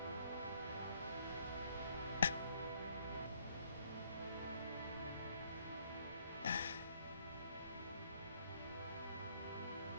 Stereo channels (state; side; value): inverted; both; correlation -0.66